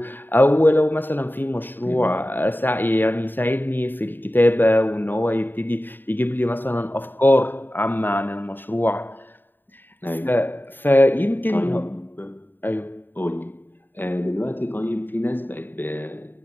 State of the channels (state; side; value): late; right; 0.093 ms